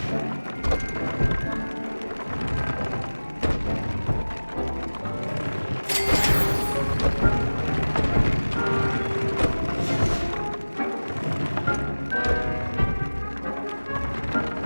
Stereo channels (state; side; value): inverted; both; correlation -1.00